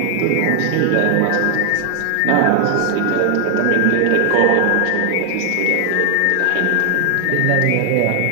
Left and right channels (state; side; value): different; both; correlation 0.00